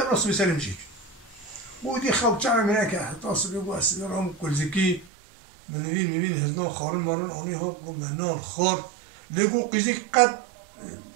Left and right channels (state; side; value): drops out; left; at 5.1 s